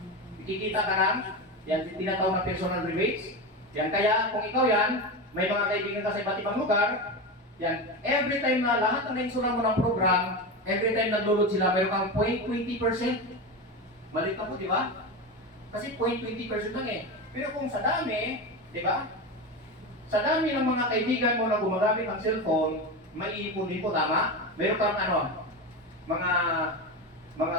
Kikita ka ng, yan, tinatawag na personal rebates. Yan, kaya kung ikaw yan, may mga kaibigan ka sa iba't ibang lugar, yan, every time na lahat ng nainsulan mo ng program, every time nag-load sila, mayroon kang 0.20%. Malit na po, di ba? Kasi 0.20% lang eh. Pero kung sa dami, di ba? Sa dami ng mga kaibigan mo na gumagamit ng cellphone, may ipon-ipon, tama? Meron kang mga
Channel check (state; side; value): normal; both; correlation 0.20